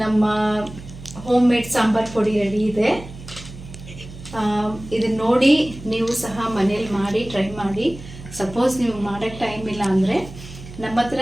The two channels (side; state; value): right; noise; hum, 14 dB below the sound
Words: ನಮ್ಮ ಹೋಮ್ ಮೇಡ್ ಸಾಂಬಾರ್ ಪುಡಿ ರೆಡಿ ಇದೆ. ಇದನ್ನ ನೋಡಿ ನೀವು ಸಹ ಮನೇಲಿ ಮಾಡಿ ಟ್ರೈ ಮಾಡಿ. ಸಪೋಸ್ ನೀವು ಮಾಡೋಕ್ಕೆ ಟೈಮ್ ಇಲ್ಲ ಅಂದರೆ ನಮ್ಮ ಹತ್ರ